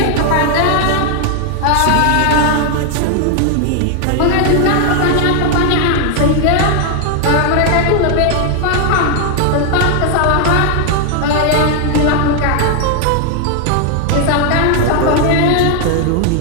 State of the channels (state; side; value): different; both; correlation 0.00